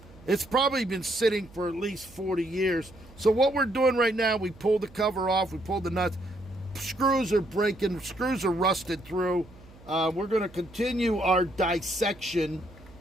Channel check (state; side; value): noise; right; hum, 23 dB below the sound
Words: it's probably been sitting for at least 40 years. So what we're doing right now, we pulled the cover off, we pulled the nuts. Screws are breaking, screws are rusted through. We're going to continue our dissection